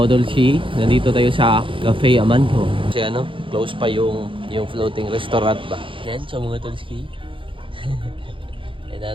C, nandito tayo sa Cafe Amanto. Kasi ano, close pa yung floating restaurant ba. Yan, so mga tulski.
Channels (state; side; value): late; left; 0.25 ms